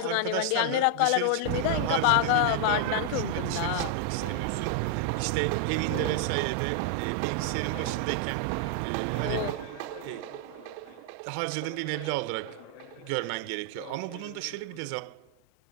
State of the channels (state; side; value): different; both; correlation 0.00